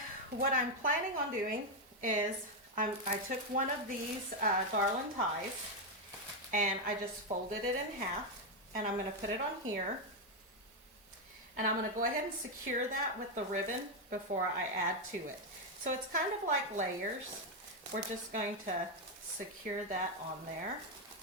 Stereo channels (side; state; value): both; normal; correlation 0.04